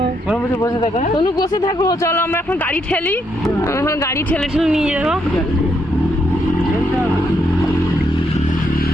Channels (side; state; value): both; normal; correlation 0.76